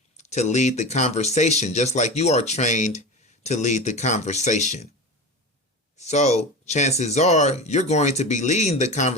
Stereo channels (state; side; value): normal; both; correlation 0.28